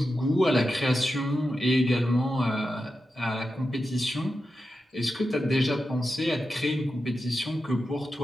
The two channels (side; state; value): both; normal; correlation 0.90